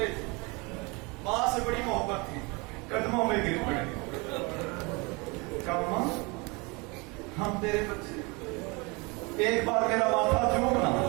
تھے، ماں سے بڑی محبت تھی، قدموں میں گر پڑے. کہا ماں ہم تیرے بچے، ایک بار میرا ماتھا چومنا.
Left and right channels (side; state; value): left; quieter; 27.8 dB